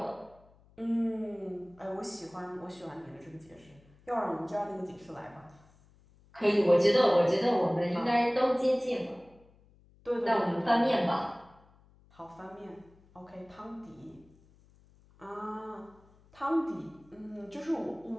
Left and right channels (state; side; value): noise; left; hum, 28 dB below the sound